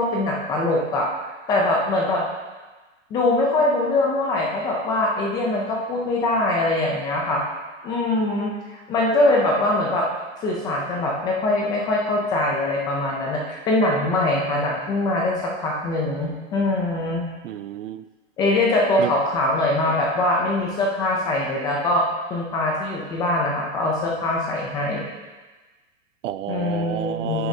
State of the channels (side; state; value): both; normal; correlation 0.32